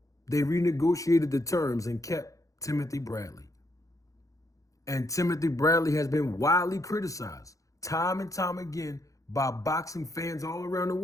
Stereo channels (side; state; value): right; late; 0.16 ms